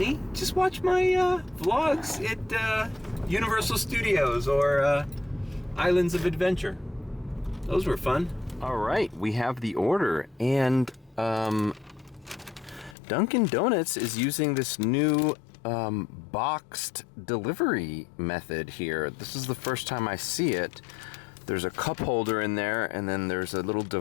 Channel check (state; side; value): drops out; right; at 13.0 s